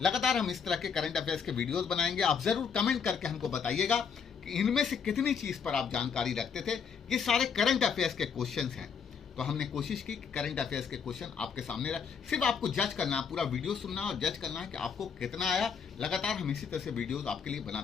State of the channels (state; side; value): quieter; right; 6.5 dB